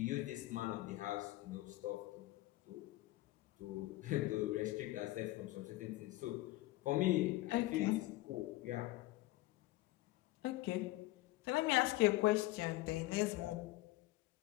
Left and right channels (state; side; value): quieter; right; 18.1 dB